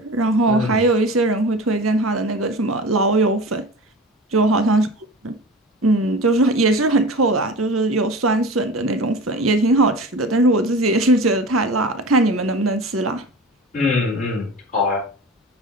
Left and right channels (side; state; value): both; normal; correlation 0.34